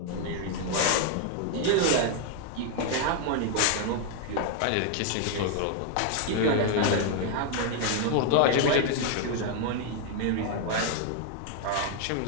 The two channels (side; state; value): both; different; correlation 0.00